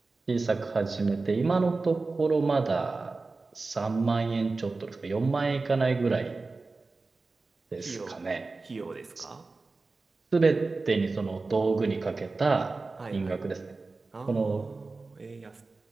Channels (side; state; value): left; quieter; 3.7 dB